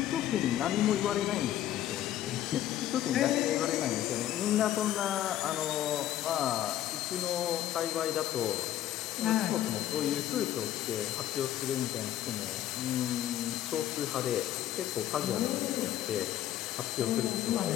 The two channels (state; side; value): quieter; right; 12.5 dB